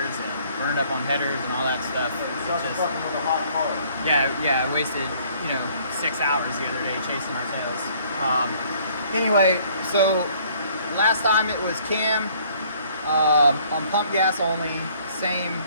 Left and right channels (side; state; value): both; inverted; correlation -0.60